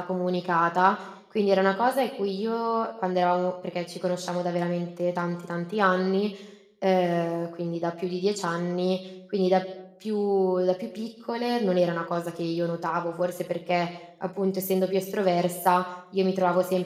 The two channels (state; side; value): identical; both; correlation 1.00